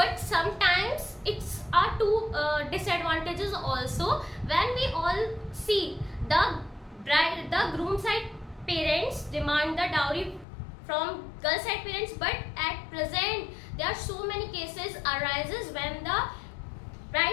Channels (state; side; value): drops out; right; at 10.5 s